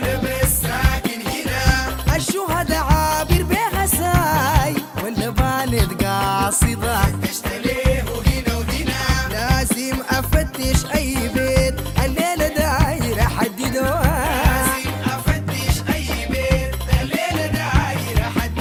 بس ساكن هنا الشهداء عابر بها ساي ولا بانت قاصدة؟ فتشت له هنا وهنا لازم افتش اي بيت الليلة دايرة حددوها. لازم افتش اي بيت الليلة دايرة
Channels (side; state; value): both; identical; correlation 1.00